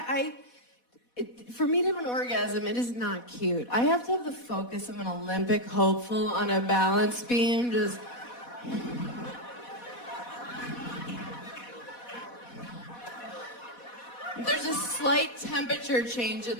for me to have an orgasm, it is not cute. I have to have the focus of an Olympic hopeful on a balance beam, just... There's a slight temperature change in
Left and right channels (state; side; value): late; right; 4.1 ms